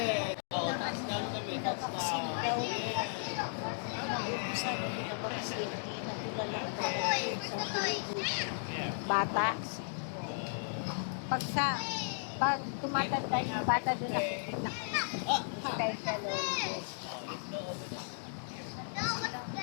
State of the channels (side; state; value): right; silent; digital silence